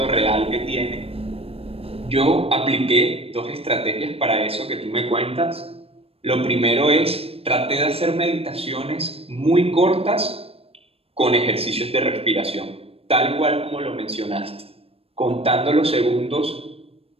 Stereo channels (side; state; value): left; late; 0.28 ms